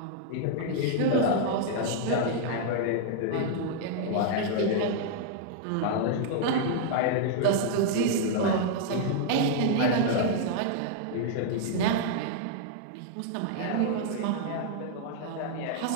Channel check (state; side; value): different; both; correlation -0.01